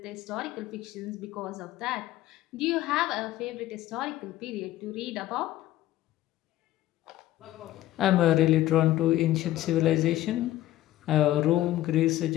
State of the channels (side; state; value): right; quieter; 14.6 dB